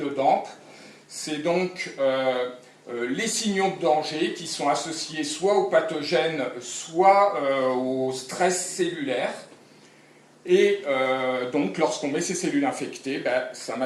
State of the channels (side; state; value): both; identical; correlation 1.00